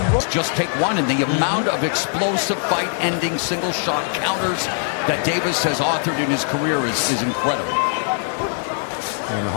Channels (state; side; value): silent; right; 65 dB below the other